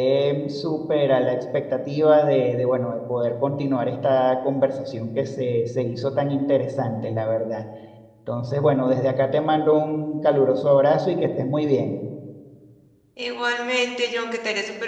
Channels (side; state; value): both; identical; correlation 1.00